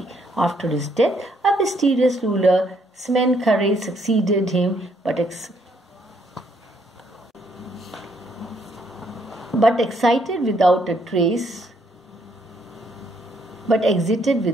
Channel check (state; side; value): normal; both; correlation 0.70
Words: After his death, a mysterious ruler, Smenkhare, succeeded him, but exited without a trace.